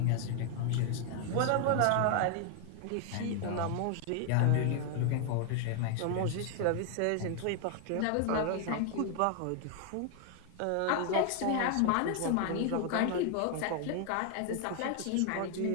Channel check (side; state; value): both; different; correlation 0.00